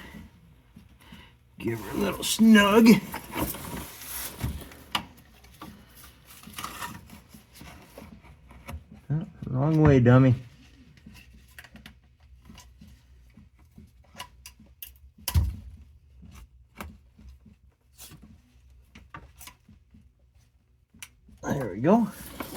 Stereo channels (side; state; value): both; identical; correlation 1.00